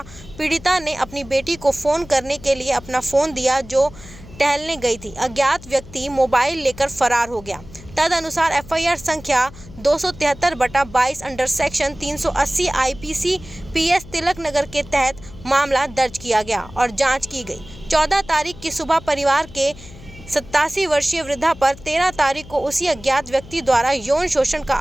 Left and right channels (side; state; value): left; noise; hum, 18 dB below the sound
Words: पीड़िता ने अपनी बेटी को फ़ोन करने के लिए अपना फ़ोन दिया जो टहलने गई थी। अज्ञात व्यक्ति मोबाइल लेकर फरार हो गया। तदनुसार एफआईआर संख्या 273/22 under section 380 IPC PS Tilak Nagar के तहत मामला दर्ज किया गया और जांच की गई। 14 तारीख की सुबह परिवार के 87 वर्षीय वृद्धा पर 13 तारीख को उसी अज्ञात व्यक्ति द्वारा यौन शोषण का